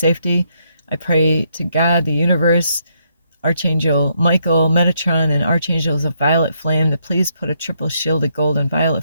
I pray to God, the universe, Archangel Michael, Metatron, and Archangels of Violet Flame to please put a triple shield of gold and violet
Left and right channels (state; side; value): inverted; both; correlation -0.76